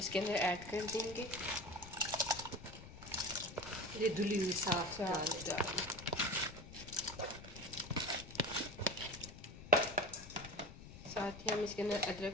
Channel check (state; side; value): noise; left; rumble, 14 dB below the sound